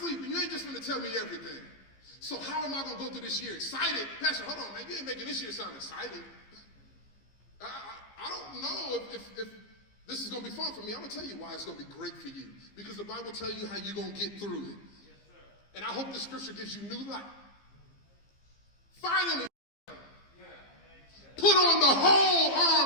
You ain't just going to tell me everything. So how am I going to go through this year excited? Pastor, hold on, man. You ain't making this year sound exciting. I don't know if this is going to be fun for me. I'm going to tell you why it's going to be great for you. Because the Bible tells you how you're going to get through it. Yes, sir. And I hope the scripture gives you new life. Finally, put on the whole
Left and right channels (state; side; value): late; right; 15 ms